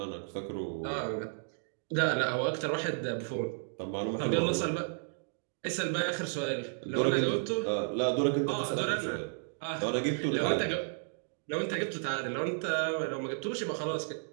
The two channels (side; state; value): left; silent; digital silence